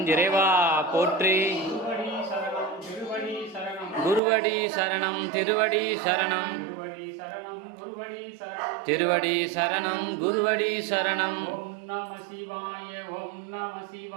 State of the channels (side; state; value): left; drops out; at 4.2 s